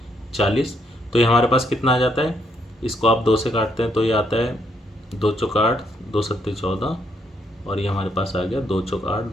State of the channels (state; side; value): normal; both; correlation 0.74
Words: तो ये हमारे पास कितना आ जाता है। इसको आप 2 से काटते हैं तो ये आता है 2 चौक 8, 2 सत्ते 14, और ये हमारे पास आ गया 2 चौक 8,